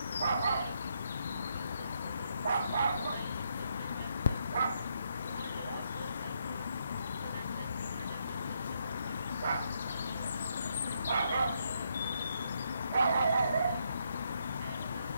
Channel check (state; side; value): inverted; both; correlation -0.76